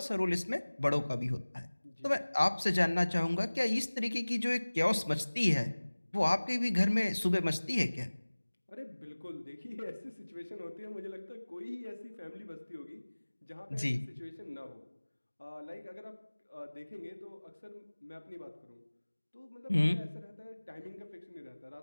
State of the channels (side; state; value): both; inverted; correlation -1.00